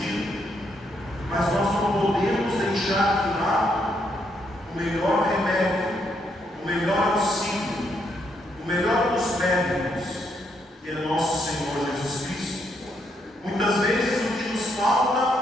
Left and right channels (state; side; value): normal; both; correlation 0.76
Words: mas nós não podemos deixar de lado o melhor remédio, o melhor auxílio, o melhor dos médicos, que é nosso Senhor Jesus Cristo. Muitas vezes o que nos falta